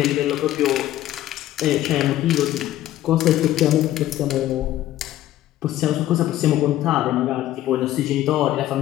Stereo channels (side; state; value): right; quieter; 13.8 dB